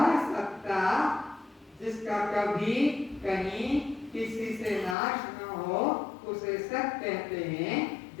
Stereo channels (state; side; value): drops out; right; at 5.0 s